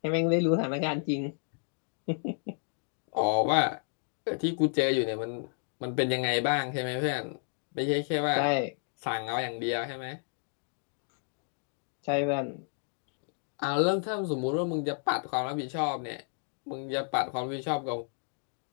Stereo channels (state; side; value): silent; right; digital silence